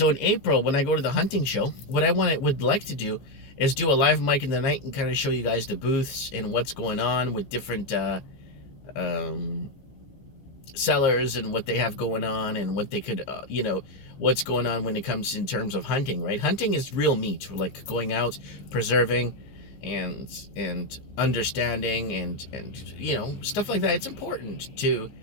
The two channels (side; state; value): right; late; 15 ms